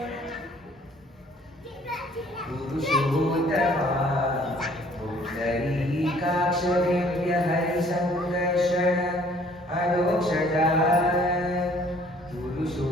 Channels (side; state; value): both; normal; correlation 0.58